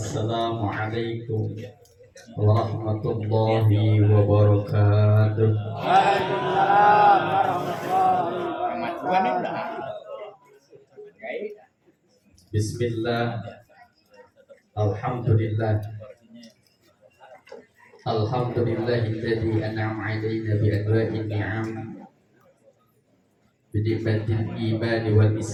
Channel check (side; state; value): both; identical; correlation 1.00